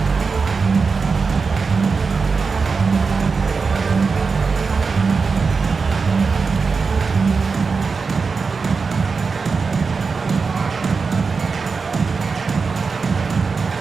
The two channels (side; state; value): left; quieter; 4.8 dB